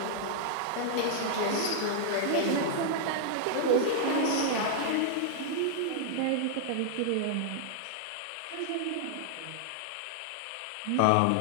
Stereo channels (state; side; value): different; both; correlation -0.01